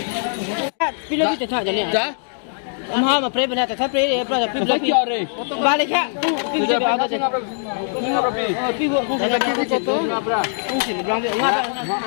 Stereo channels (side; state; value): right; silent; digital silence